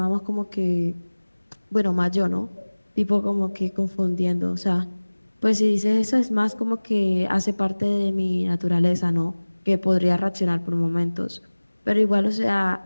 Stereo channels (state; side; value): inverted; both; correlation -1.00